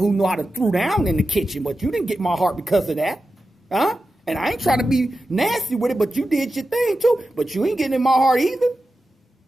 who know how to throw down in the kitchen, but you didn't get my heart because of that, huh? And I ain't trying to be nasty with it, but you did your thing too. But you ain't getting in my heart either.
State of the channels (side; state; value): both; normal; correlation 0.92